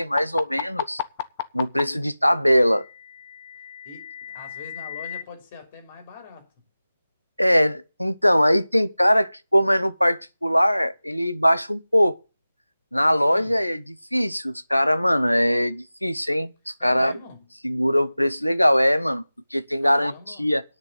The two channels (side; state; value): both; inverted; correlation -0.97